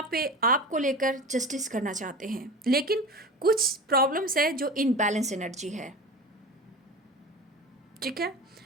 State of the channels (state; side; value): normal; both; correlation 0.32